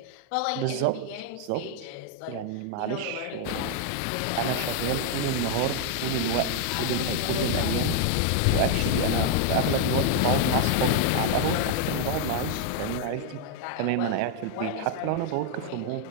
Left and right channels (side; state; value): both; different; correlation 0.00